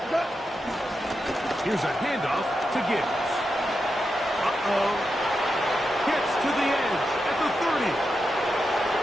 Here's a handoff to Gibbs. Gets to the edge at the 30.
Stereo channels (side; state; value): both; normal; correlation 0.87